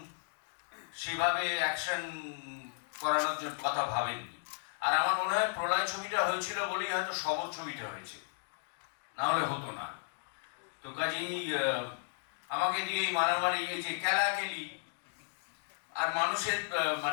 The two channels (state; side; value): silent; right; digital silence